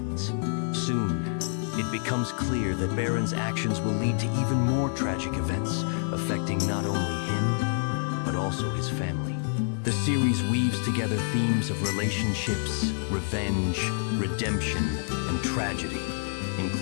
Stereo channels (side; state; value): right; silent; digital silence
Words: Soon, it becomes clear that Baran's actions will lead to even more tragic events, affecting not only him, but also his family. The series weaves together themes of relationships, revenge, redemption, and tragedy,